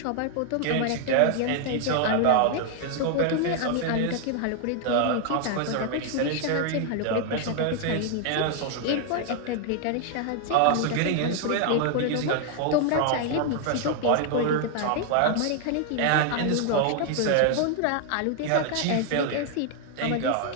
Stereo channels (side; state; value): both; different; correlation 0.00